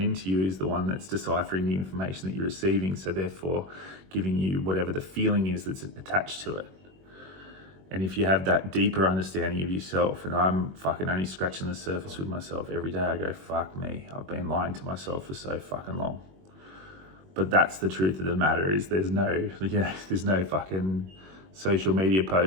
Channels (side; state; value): left; late; 21 ms